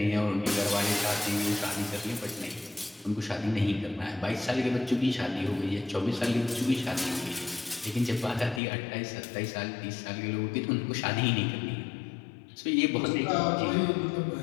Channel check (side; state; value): right; drops out; at 8.6 s